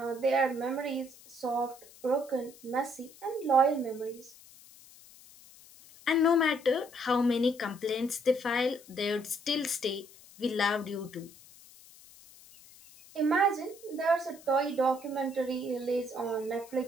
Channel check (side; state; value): left; noise; hiss, 22 dB below the sound